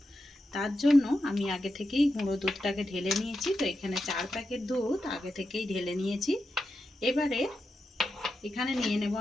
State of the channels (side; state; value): both; normal; correlation 0.88